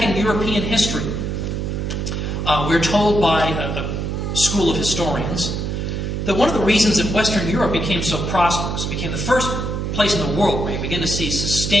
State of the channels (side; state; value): right; noise; hum, 2 dB below the sound